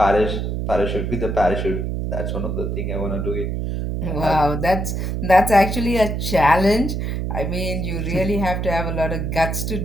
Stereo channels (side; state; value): right; noise; hum, 2 dB below the sound